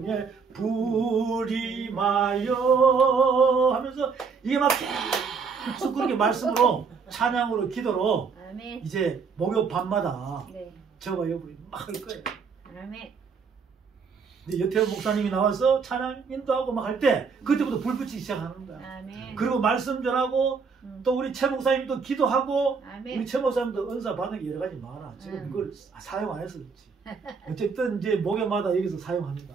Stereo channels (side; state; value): left; quieter; 5.4 dB